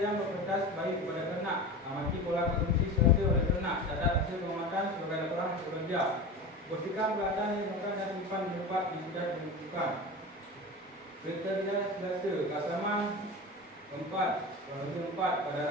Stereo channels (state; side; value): normal; both; correlation 0.29